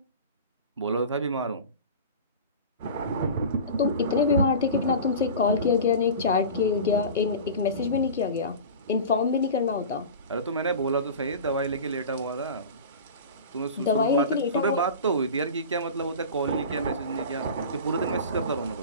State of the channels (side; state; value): both; inverted; correlation -0.33